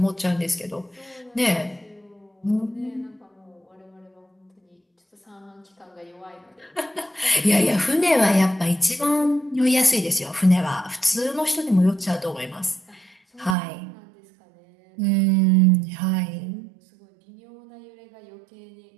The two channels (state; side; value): drops out; left; at 13.6 s